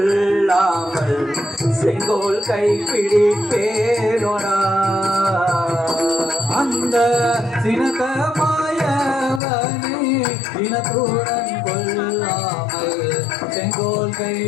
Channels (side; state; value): right; drops out; at 9.4 s